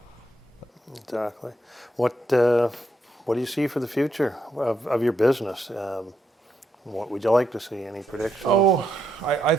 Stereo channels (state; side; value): normal; both; correlation 0.79